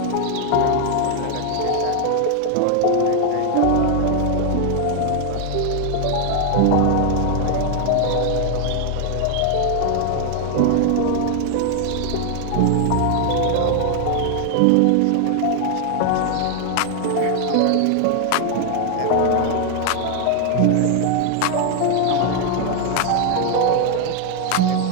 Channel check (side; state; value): both; different; correlation 0.00